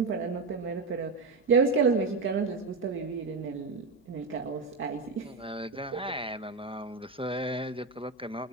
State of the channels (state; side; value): quieter; left; 4.1 dB